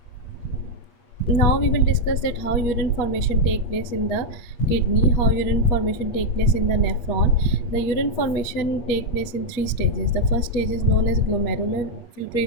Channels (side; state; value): right; late; 8.4 ms